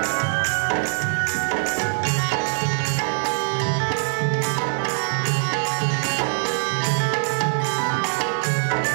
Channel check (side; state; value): left; silent; digital silence